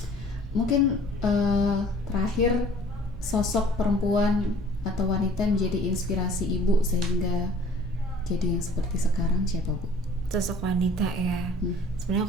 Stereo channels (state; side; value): normal; both; correlation 0.51